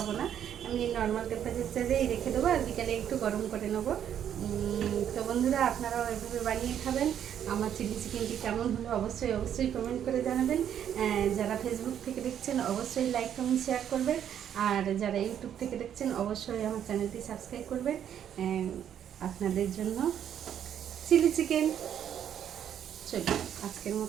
না, আমি নর্মাল টেম্পারেচারেই রেখে দেবো, আর বিকালে একটু গরম করে নেবো। তো বন্ধুরা, আপনারাও এভাবে বানিয়ে খাবেন। আমার চিলি চিকেনটি কেমন হলো অবশ্যই কমেন্ট করে জানাবেন। যারা ফেসবুক থেকে দেখছেন অবশ্যই লাইক কমেন্ট শেয়ার করবেন, আর যারা ইউটিউব থেকে দেখছেন অবশ্যই আমার চ্যানেলটি সাবস্ক্রাইব করবেন। আপনাদের জন্য চিলি চিকেন। চলুন আজকের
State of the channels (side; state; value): left; quieter; 9.5 dB